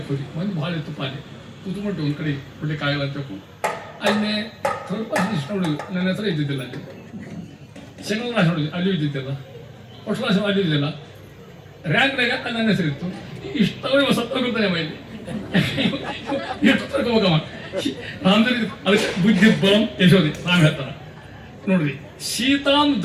ಹೋಗಿ ಒಂದು ಭಾಳ ಇತ್ತು ಪಾಲಿ ಕೂತ್ಕೊಂಡು ಒಂದು ಕಡೆ ಕೊಡ್ಲಿಕ್ಕೆ ಆಗಲ್ಲ ಅಂತ ತಿಳ್ಕೊಂಡು ಅಲ್ಲೇ ಸ್ವಲ್ಪ ಇಷ್ಟ ನೋಡಿದ್ವಿ. ನನ್ನ ಹತ್ರ ಇದ್ದಿದ್ದಿಲ್ಲ ಅಲ್ಲಿ ಸೆಕೆಂಡ್ ಕ್ಲಾಸ್ ನೋಡಿದ್ವಿ, ಅಲ್ಲಿ ಇದ್ದಿದ್ದಿಲ್ಲ. ಫಸ್ಟ್ ಕ್ಲಾಸ್ ಅಲ್ಲಿ ಇದ್ದಿಲ್ಲ. ರ್ಯಾಂಕ್ನಾಗ ನನ್ನ ಹೆಸರು ಇತ್ತು. ಇಷ್ಟವೇ ಸತ್ತೋಗಿರ್ತಾನೆ ಮೈಲಿ ಎಷ್ಟು ತರ್ಕೋಬೇಕಮ್ಮ ರಾಮದಲ್ಲಿ. ಅದಕ್ಕೆ ಬುದ್ಧಿ ಬಲಂ ಯಶೋದಿ ರಾಮ್ ಹೇಳ್ತಾರ ನೋಡ್ರಿ. ಸೀತಾಂ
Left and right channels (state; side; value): identical; both; correlation 1.00